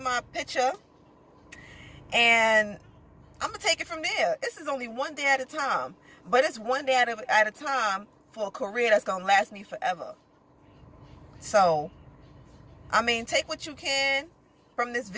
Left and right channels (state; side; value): identical; both; correlation 1.00